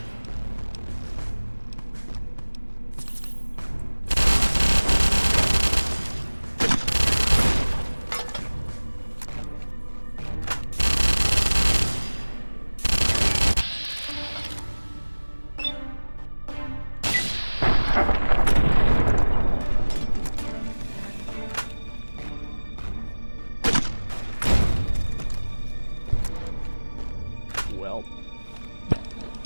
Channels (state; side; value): inverted; both; correlation -1.00